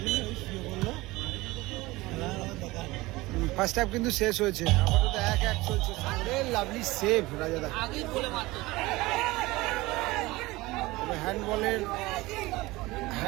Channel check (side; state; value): left; quieter; 20.5 dB